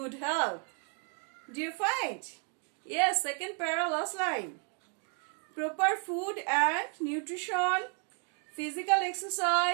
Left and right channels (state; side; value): quieter; left; 36.5 dB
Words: health. Do you find? Yes, second para last line. Proper food and nutrition, physical